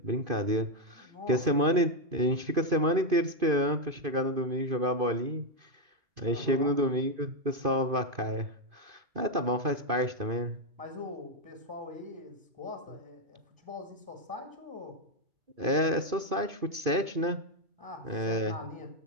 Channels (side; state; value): left; late; 2.5 ms